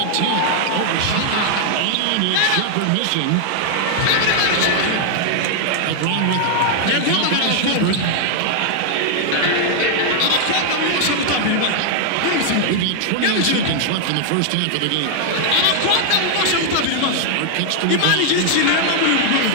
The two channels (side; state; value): both; different; correlation -0.01